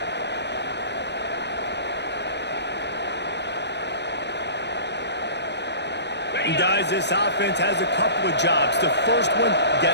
And guys, this offense has a couple of jobs. The first one,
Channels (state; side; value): late; right; 0.50 ms